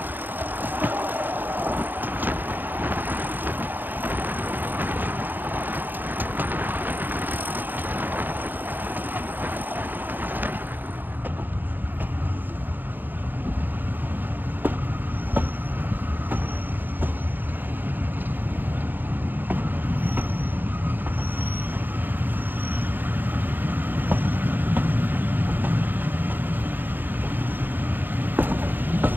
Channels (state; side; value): late; left; 0.089 ms